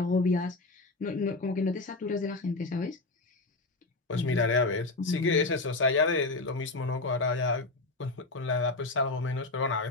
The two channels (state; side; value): quieter; right; 3.2 dB